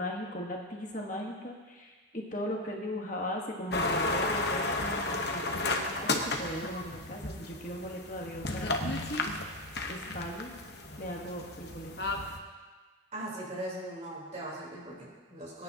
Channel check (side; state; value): both; normal; correlation 0.11